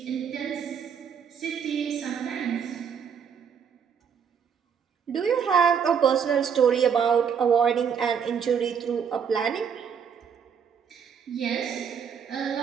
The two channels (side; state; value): left; quieter; 7.3 dB